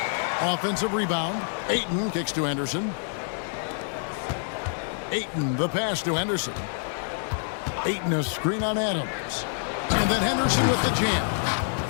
Offensive rebound. Ayton kicks to Henderson. Ayton, the pass to Henderson. Ayton, a screen on Adams. And then Henderson with the jam.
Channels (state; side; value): silent; right; 60 dB below the other